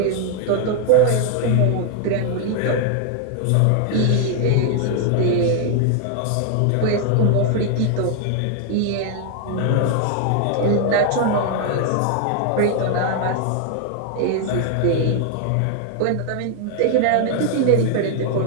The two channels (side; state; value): both; different; correlation 0.00